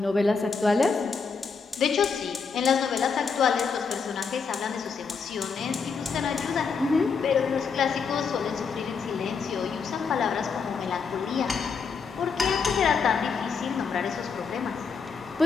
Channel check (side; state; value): right; quieter; 5.5 dB